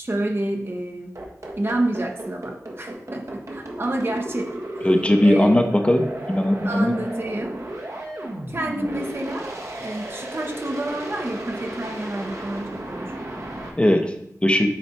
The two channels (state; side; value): normal; both; correlation 0.93